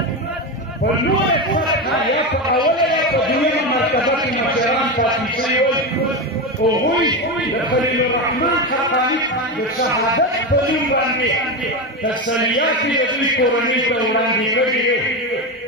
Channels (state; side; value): normal; both; correlation 0.16